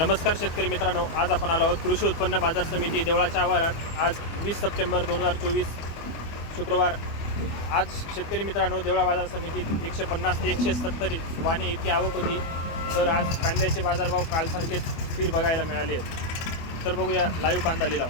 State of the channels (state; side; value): late; right; 25 ms